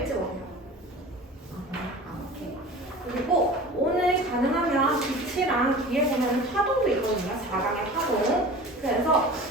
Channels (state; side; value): normal; both; correlation 0.38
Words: 오세요. 오케이. 그리고 오늘 가능하면 빛이랑 뒤에 보면 파동도 있거든요. 4강의 파동. 그래서